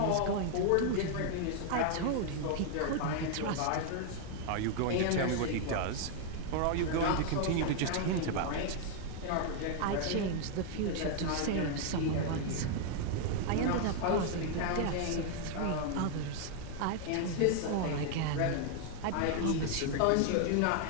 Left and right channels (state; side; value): different; both; correlation 0.00